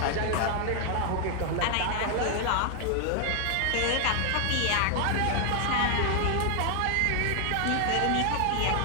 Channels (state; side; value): different; both; correlation 0.00